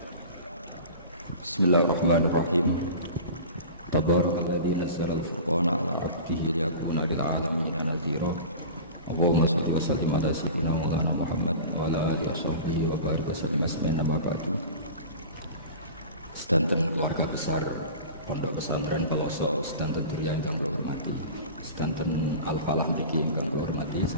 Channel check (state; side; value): inverted; both; correlation -0.36